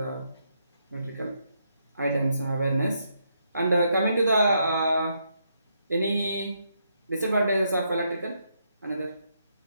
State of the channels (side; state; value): both; inverted; correlation -0.77